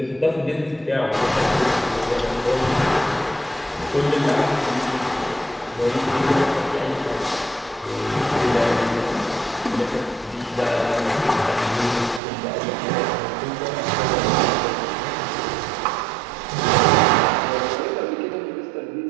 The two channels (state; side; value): drops out; left; at 12.2 s